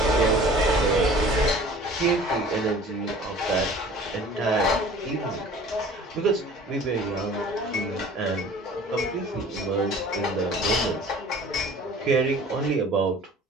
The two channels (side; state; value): both; normal; correlation 0.46